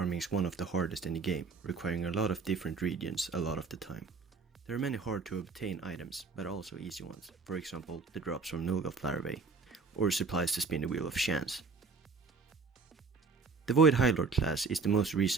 is one of the hardest in the game, requiring a lot of different regions a lot of the time. There are many hard to obtain items, but also easy ones, for example the drops from Nulgath larvae, or supplies to spin the wheel of chance. The Void High Lord class is the most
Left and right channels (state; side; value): quieter; left; 4.6 dB